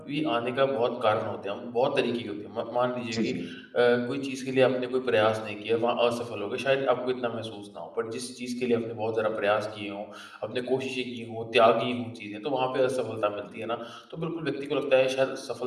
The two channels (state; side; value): identical; both; correlation 1.00